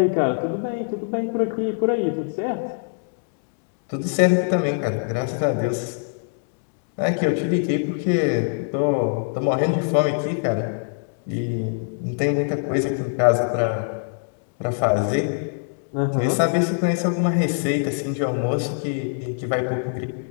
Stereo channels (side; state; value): right; silent; digital silence